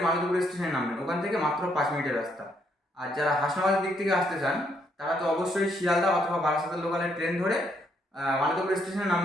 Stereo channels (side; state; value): both; normal; correlation 0.73